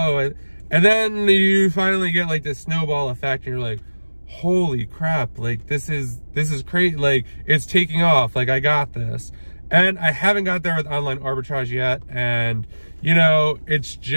And then you finally get like this snowball effect and you're like, holy crap, like this is crazy. Like it's taking off, like I got this. And I haven't got there with online arbitrage yet. And you know, it's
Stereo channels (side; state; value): both; inverted; correlation -1.00